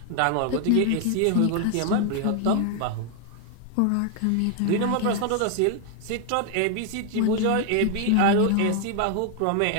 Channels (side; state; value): both; different; correlation 0.00